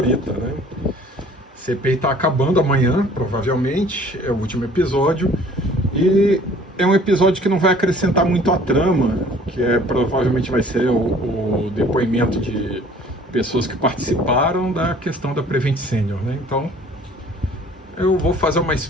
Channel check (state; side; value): normal; both; correlation 0.52